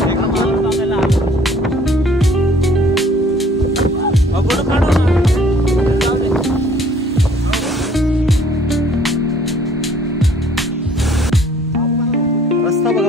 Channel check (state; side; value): normal; both; correlation 0.56